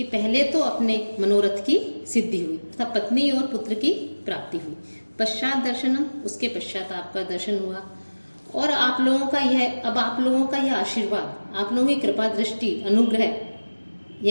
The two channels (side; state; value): both; inverted; correlation -1.00